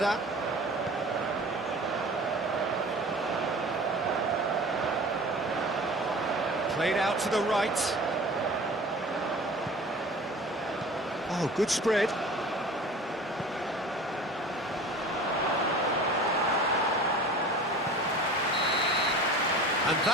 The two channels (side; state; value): both; normal; correlation 0.40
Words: Played out to the right. Oh, good spread. And